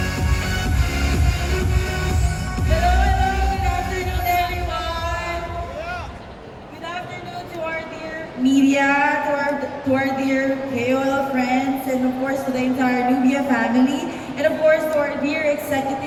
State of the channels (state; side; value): identical; both; correlation 1.00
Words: Media, to our dear KOL friends, and of course to the entire Nubia family, and of course to our dear